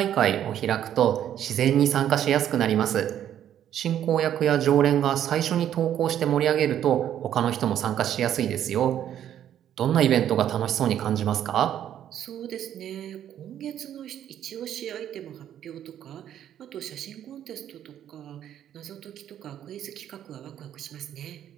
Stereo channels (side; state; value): left; quieter; 10.6 dB